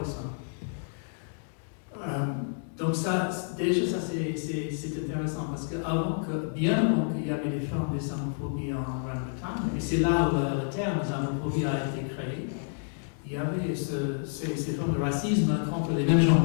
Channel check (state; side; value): silent; right; digital silence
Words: Donc déjà c'est intéressant, parce qu'avant bien avant qu'il y avait des formes d'islamophobie en Grande-Bretagne, et c'est là où le terme islamophobie a été créé, il y avait ces formes de racisme contre les mêmes